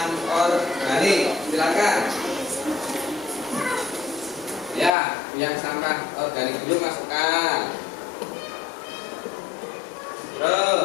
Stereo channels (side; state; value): right; drops out; at 4.9 s